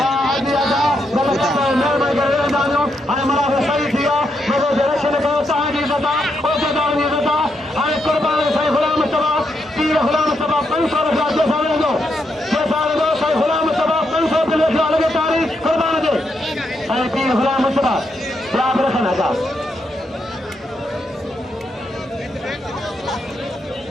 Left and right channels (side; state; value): both; normal; correlation 0.80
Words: दिया जा गलत मैं करे दानियों अरे मला सही किया मेरे डायरेक्शन को ताजी बता ओ जदार ने बता अरे कुर्बान सही गुलाम मुस्तफा पीर गुलाम मुस्तफा 500 रुपया जो सारे दो सही गुलाम मुस्तफा 500 के लेके लगे तारीख कुर्बान दे अरे पीर गुलाम मुस्तफा याद रखना का